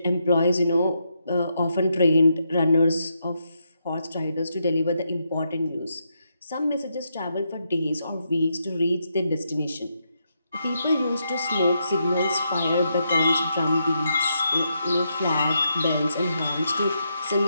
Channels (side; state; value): both; inverted; correlation -0.81